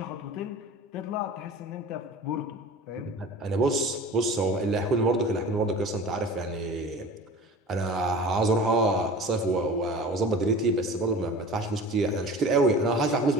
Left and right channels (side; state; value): both; normal; correlation 0.39